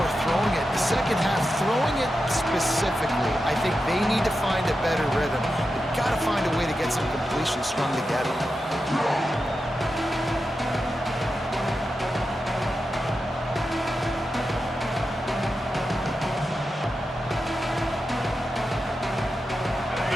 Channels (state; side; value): normal; both; correlation 0.90